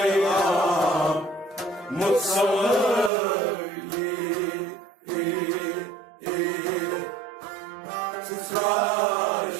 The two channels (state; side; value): drops out; left; at 3.1 s